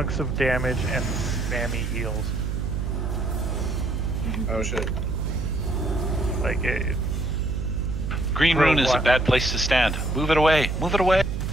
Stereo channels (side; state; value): right; noise; hum, 1 dB below the sound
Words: of damage and spammy heals. Oh shit. Like it. Green Rune is a bad place to stand. Move it away. Move it away.